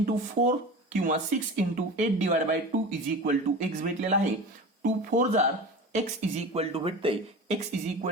4 किंवा 6 into 8 divided by 2 is equal to x भेटलेला आहे. 2 4 जार x इज इक्वल टू भेटतंय, x is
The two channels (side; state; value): both; normal; correlation 0.32